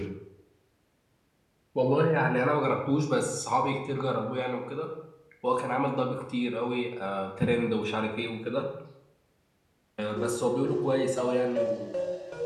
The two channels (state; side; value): identical; both; correlation 1.00